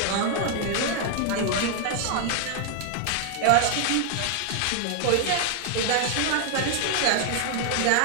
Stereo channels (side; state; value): both; different; correlation 0.00